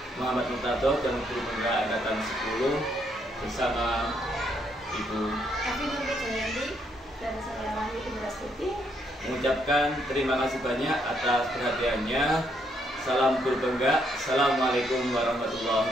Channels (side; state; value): both; normal; correlation 0.73